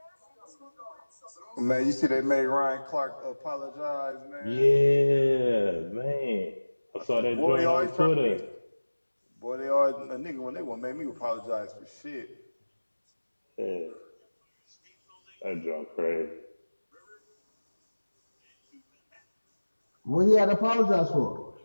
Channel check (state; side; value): inverted; both; correlation -1.00